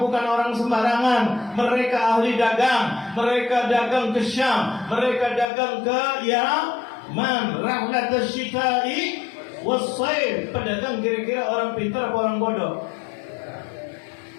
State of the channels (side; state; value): right; drops out; at 5.5 s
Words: bukan orang sembarangan, mereka ahli dagang, mereka dagang ke Syam, mereka dagang ke Yaman, rahlat asy-syita'i was-sayf, pedagang kira-kira orang pintar apa orang bodoh?